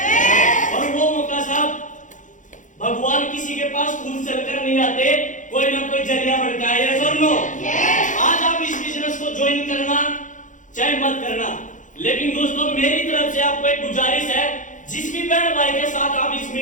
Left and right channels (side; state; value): right; late; 0.37 ms